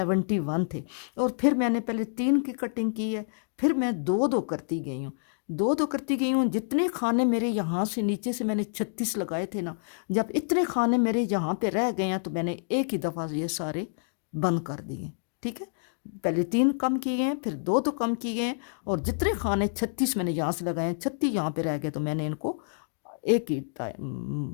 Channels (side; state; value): right; silent; digital silence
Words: थे। और फिर मैंने पहले 3 की कटिंग की है, फिर मैं 2-2 करती गई हूँ, 2-2 करती गई हूँ। जितने खाने मेरे यहाँ से नीचे से मैंने 36 लगाए थे ना, जब इतने खाने मेरे यहाँ पे रह गए हैं तो मैंने एक ही दफ़ा ये सारे बंद कर दिए, ठीक है। पहले 3 कम किए हैं, फिर 2-2 कम किए हैं, और जितने खाने 36 मैंने यहाँ से लगाए हैं, 36 यहाँ पे रह गए, तो मैंने इनको एक ही